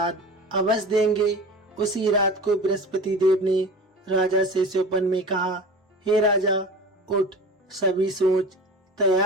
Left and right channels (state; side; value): normal; both; correlation 0.35